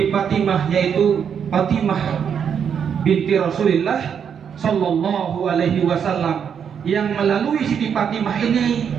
Fatimah, yaitu Fatimah binti Rasulullah sallallahu alaihi wasallam, yang melalui Siti Fatimah ini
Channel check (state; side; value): quieter; left; 7.6 dB